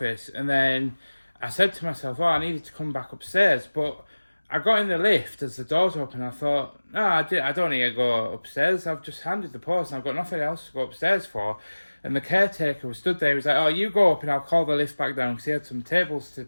and then I said to myself, oh, I needed to come back upstairs, but I got in the lift as the doors open. I thought, no, I don't need to go upstairs. I've just handed the post and I've got nothing else to go upstairs for. And the caretaker was stood there. He was like, oh, you go up and I'll call the lift back down, because he had some tables to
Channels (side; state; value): both; inverted; correlation -1.00